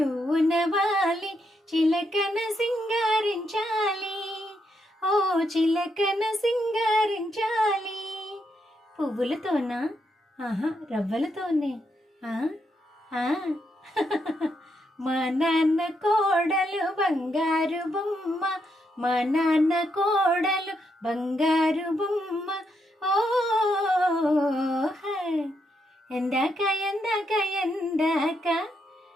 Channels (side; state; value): both; normal; correlation 0.80